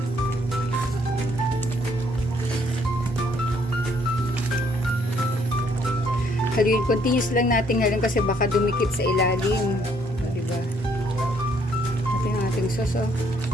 Haluin, continuous lang natin ngayon kasi baka dumikit sa ilalim. Diba? Ating sauce, oh.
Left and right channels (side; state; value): both; normal; correlation 0.67